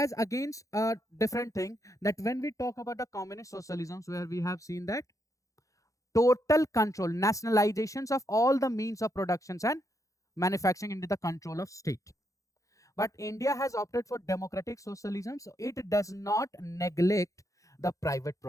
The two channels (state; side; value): late; right; 0.16 ms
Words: against a different thing, that when we talk about the communist socialisms, where we have seen that total control, nationalizations of all the means of productions and manufacturing into the control of state. But India has opted for democratic socialism, so it does not neglect the private